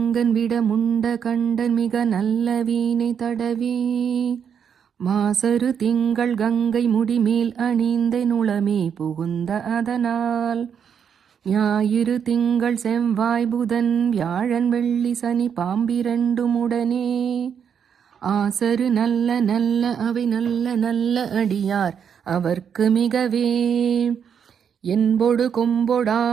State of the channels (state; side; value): quieter; left; 7.6 dB